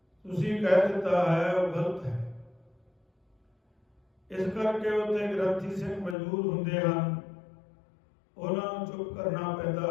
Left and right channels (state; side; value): drops out; right; at 6.2 s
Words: ਤੁਸੀਂ ਕਹਿ ਦਿੱਤਾ ਹੈ ਉਹ ਗਲਤ ਹੈ। ਇਸ ਕਰਕੇ ਉੱਥੇ ਗ੍ਰੰਥੀ ਸਿੰਘ ਮਜਬੂਰ ਹੁੰਦੇ ਹਨ, ਉਹਨਾਂ ਨੂੰ ਚੁੱਪ ਕਰਨਾ